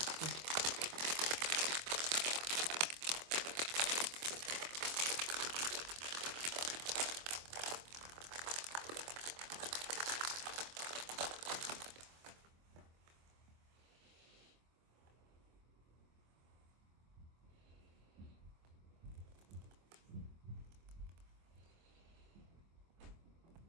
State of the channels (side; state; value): left; late; 24 ms